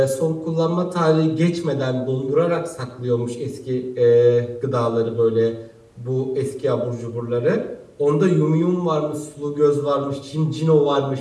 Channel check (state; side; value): identical; both; correlation 1.00